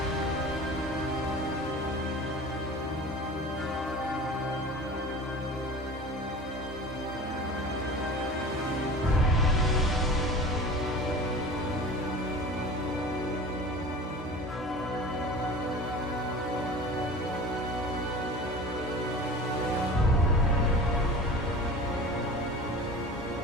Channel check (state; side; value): normal; both; correlation 0.38